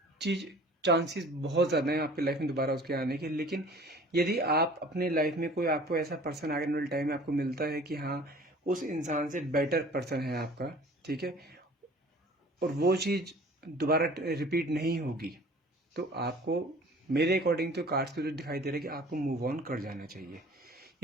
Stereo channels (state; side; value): normal; both; correlation 0.48